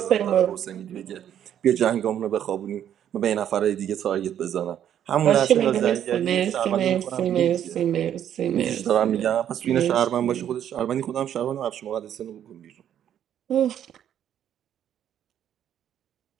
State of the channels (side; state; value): left; quieter; 10.1 dB